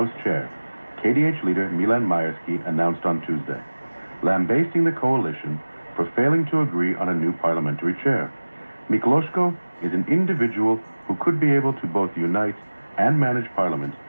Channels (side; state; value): both; inverted; correlation -1.00